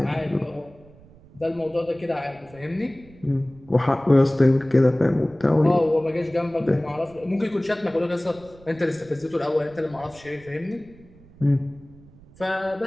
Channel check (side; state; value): right; noise; rumble, 24 dB below the sound